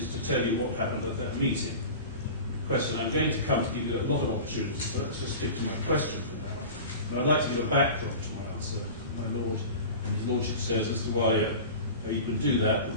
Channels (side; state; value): both; inverted; correlation -0.34